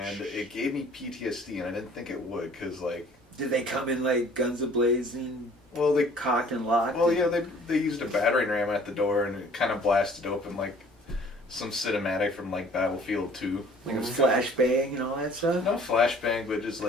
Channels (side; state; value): both; normal; correlation 0.53